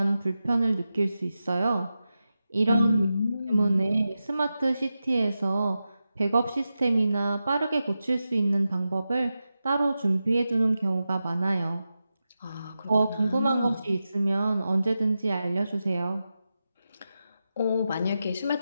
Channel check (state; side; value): inverted; both; correlation -0.92